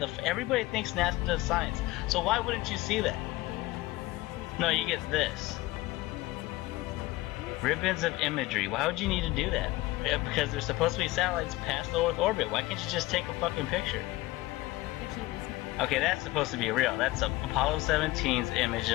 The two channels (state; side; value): quieter; right; 19.1 dB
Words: everybody thinks NASA does science, so why wouldn't you see that? No, you get this. Ribbons of imagery. Why would you need to do that? Because there's supposed to be satellites past the Earth orbit. Why can't you just take a fucking picture? Okay, that's supposed to be real. That's Apollo 17's image